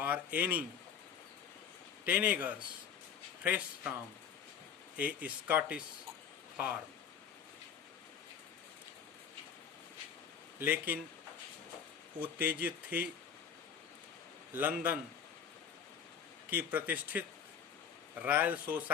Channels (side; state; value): right; quieter; 7.8 dB